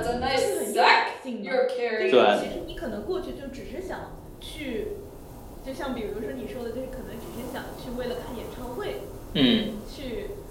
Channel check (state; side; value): identical; both; correlation 1.00